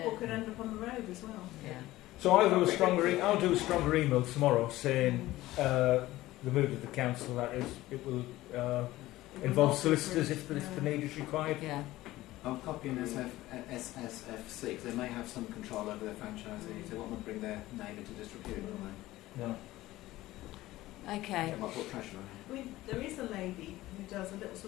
Yeah. could end up on the road as well. Yeah. So I'll do a stronger email tomorrow saying the mood of the council that is it will involve solicitors if the need is required. Yeah. I'll copy in SSFC because they may have some control over their franchisees. They want to bring their name into disrepute, don't they? No. Okay. I might put pressure on I mean, there is a lady who does a little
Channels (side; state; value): right; quieter; 16.8 dB